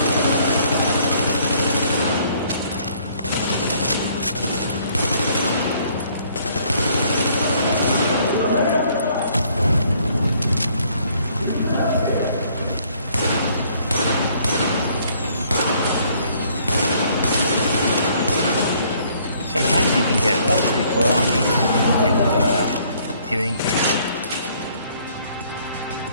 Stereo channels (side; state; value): both; inverted; correlation -0.63